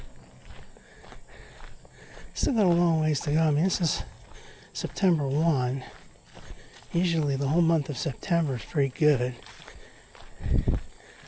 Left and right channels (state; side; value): identical; both; correlation 1.00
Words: Still got a long ways to go. I mean, this is September 1. Usually the whole month of September is pretty good.